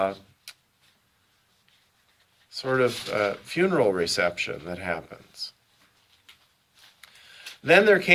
sort of funeral reception that happens. Then there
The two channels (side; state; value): both; identical; correlation 1.00